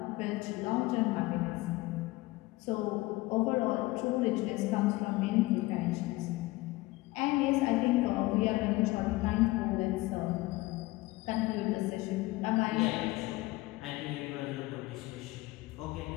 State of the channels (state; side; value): quieter; right; 20.3 dB